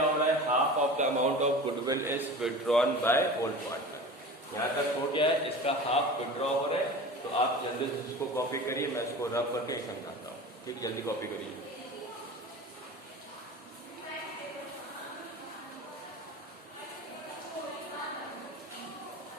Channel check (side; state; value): both; normal; correlation 0.35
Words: हो रहा है half of the amount of goodwill is withdrawn by old partner. यहाँ तक हो गया है, इसका हाफ विड्रॉ हो रहा है। तो आप जल्दी से इसको कॉपी करिए, मैं इसको रब करके समझाता हूँ। ठीक, जल्दी कॉपी करिए।